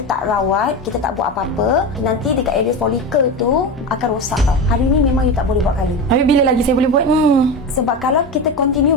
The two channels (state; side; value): normal; both; correlation 0.21